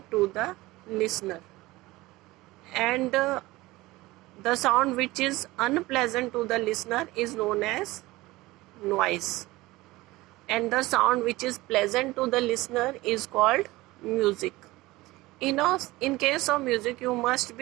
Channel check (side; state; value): left; quieter; 19.6 dB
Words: to the listener. And the sound which is unpleasant to the listener is known as noise. And the sound which is pleasant to the listener is called music. In case of music, you must